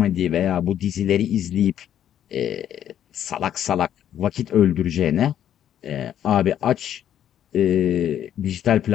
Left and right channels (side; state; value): right; quieter; 10.3 dB